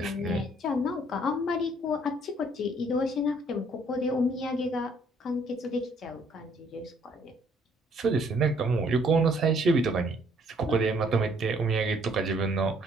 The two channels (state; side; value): normal; both; correlation 0.63